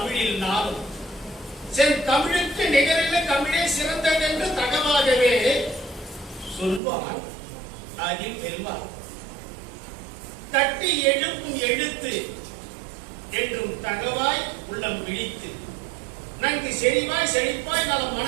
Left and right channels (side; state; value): left; drops out; at 6.8 s